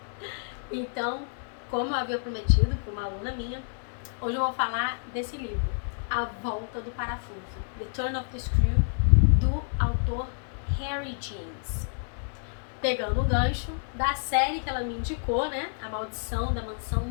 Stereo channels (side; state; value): right; silent; 59 dB below the other